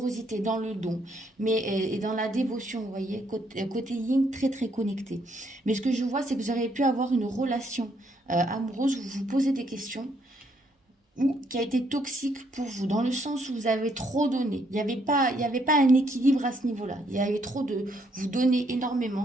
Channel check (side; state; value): both; normal; correlation 0.71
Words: dans le don, et dans la dévotion, vous voyez, côté yin, très très connecté. Mais ce que je vois, c'est que vous auriez pu avoir une relation amoureuse où vous vous posez des questions, ou qui a été toxique pour vous, dans le sens où vous avez trop donné. Il n'y avait pas un équilibre à ce niveau-là. Il y avait trop de... Vous donnez